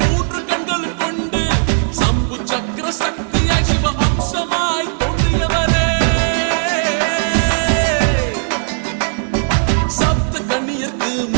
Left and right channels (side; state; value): left; silent; 68 dB below the other